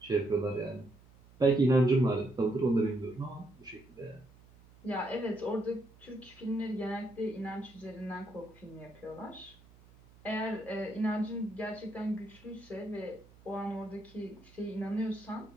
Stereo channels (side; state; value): right; noise; hum, 25 dB below the sound